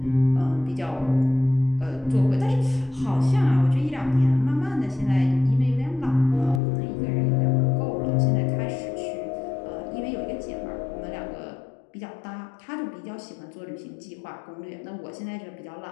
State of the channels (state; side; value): drops out; right; at 6.6 s